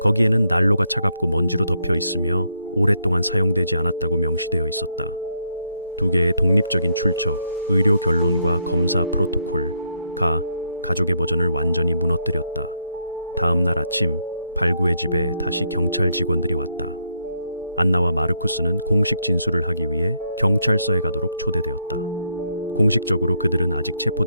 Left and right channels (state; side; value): inverted; both; correlation -0.76